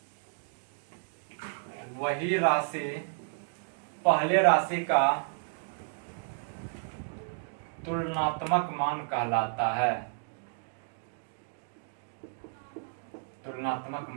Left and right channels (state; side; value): silent; left; digital silence